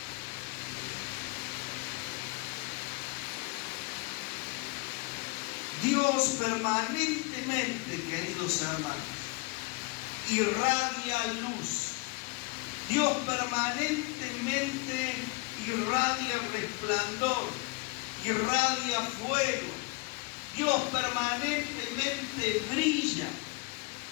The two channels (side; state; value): right; quieter; 27.3 dB